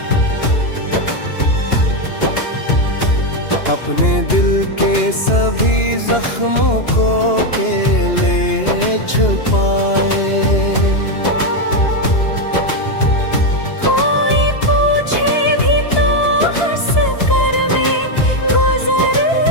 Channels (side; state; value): right; late; 2.9 ms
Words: अपने दिल के सभी जख्मों को अकेले छुपाए। कोई पूछे भी तो हंस कर मैं गुजर